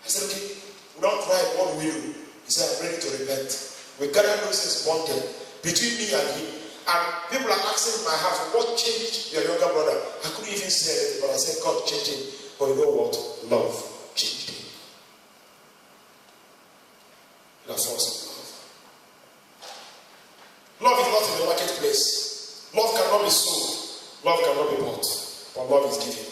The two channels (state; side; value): identical; both; correlation 1.00